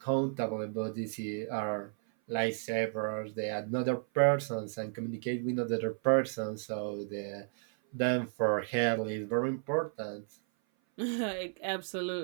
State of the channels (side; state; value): left; silent; 56 dB below the other